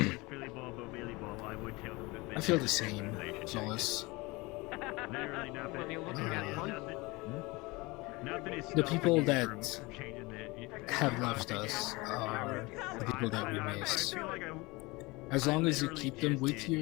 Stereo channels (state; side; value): quieter; right; 23.8 dB